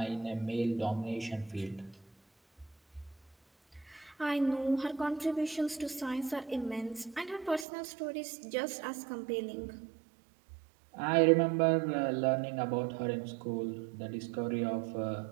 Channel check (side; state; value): left; drops out; at 7.7 s